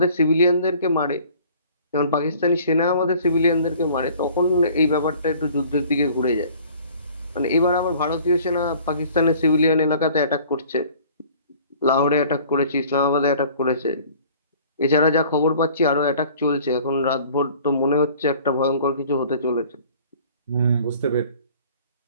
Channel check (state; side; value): inverted; both; correlation -0.51